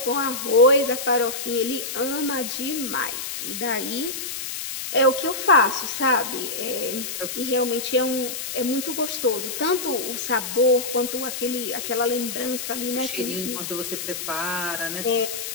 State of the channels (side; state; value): left; noise; hiss, 6 dB below the sound